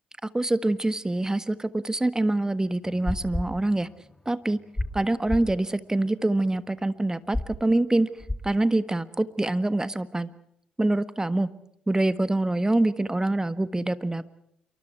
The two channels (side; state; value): both; normal; correlation 0.98